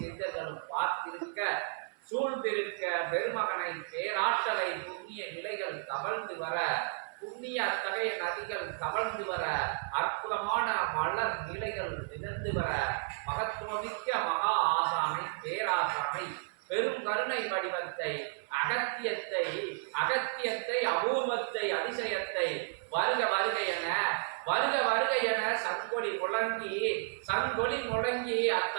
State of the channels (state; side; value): silent; left; 56 dB below the other